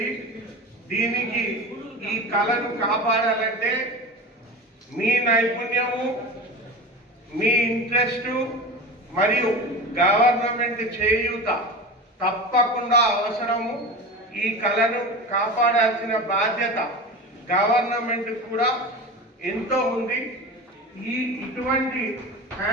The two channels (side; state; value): both; normal; correlation 0.29